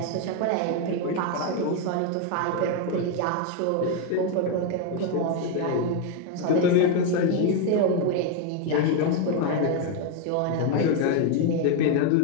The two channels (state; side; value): different; both; correlation 0.01